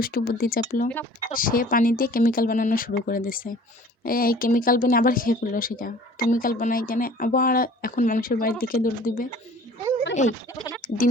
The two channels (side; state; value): both; normal; correlation 0.49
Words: বুদ্ধি চাপলো। সে পানি দিয়ে কেমিক্যাল বানানো শুরু করে দিছে। এই কেমিক্যাল বানিয়ে আবার খেয়ে ফেললো সেটা। কেমিক্যাল বানাই কেন আবার এখন মানুষের বাড়ির দিকে দৌড় দিবে। এই দিন